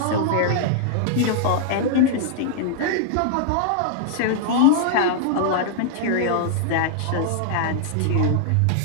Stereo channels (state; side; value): different; both; correlation -0.01